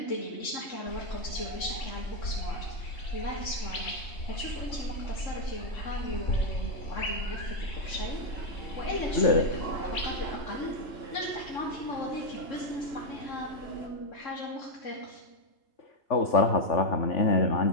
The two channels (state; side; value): late; right; 3.7 ms